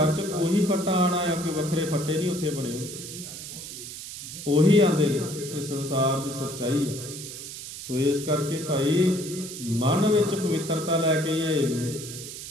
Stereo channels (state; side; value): noise; right; hiss, 10 dB below the sound